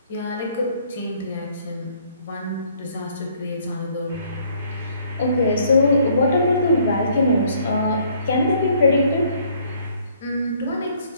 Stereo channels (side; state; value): both; inverted; correlation -0.63